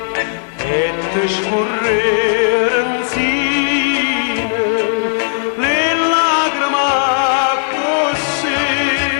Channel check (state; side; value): silent; right; 60 dB below the other